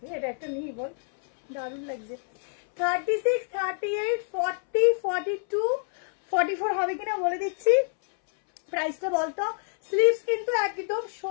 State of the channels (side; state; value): right; silent; 60 dB below the other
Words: এটা একটা নিই বল, দারুণ লাগছে। 36, 38, 40, 42, 44 হবে কিনা বলে দিচ্ছি। প্রাইসটা বলতো। স্লিভস কিন্তু একদম